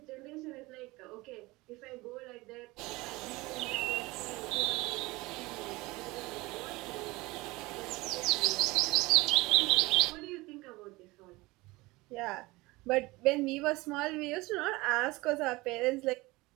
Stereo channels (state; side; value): quieter; left; 21.8 dB